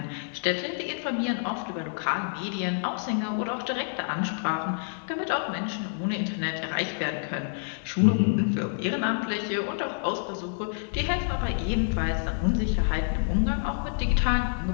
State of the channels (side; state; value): right; silent; digital silence